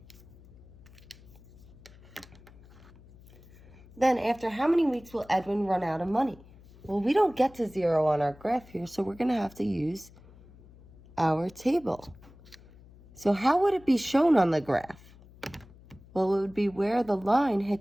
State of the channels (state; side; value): noise; left; hum, 23 dB below the sound